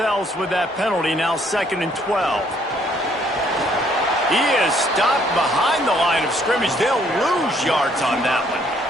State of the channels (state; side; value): normal; both; correlation 0.65